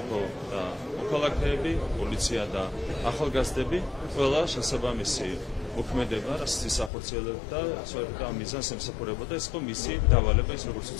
და მოქალაქეები, პოლიცია და ახალგაზრდები, ყველა შესაბამისი მოქმედება, რაც ის ახორციელებდა, სწორედ ამ მიზანს ემსახურებოდა, ეს იყო მისი დავალება, ის როგორც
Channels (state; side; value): drops out; right; at 6.9 s